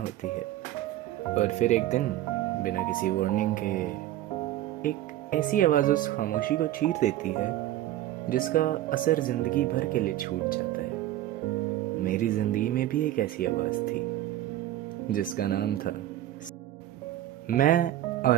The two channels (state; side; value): quieter; left; 13.8 dB